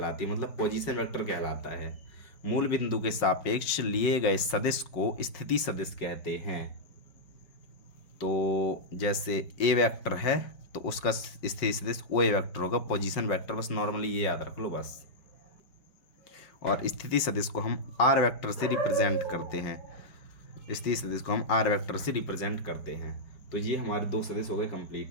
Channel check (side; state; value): right; late; 5.5 ms